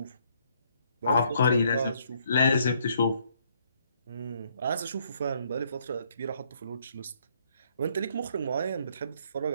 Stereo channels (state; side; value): inverted; both; correlation -0.69